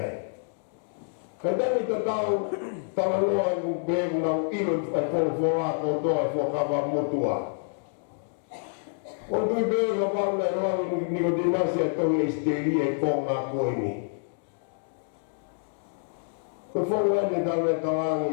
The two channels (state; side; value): silent; right; digital silence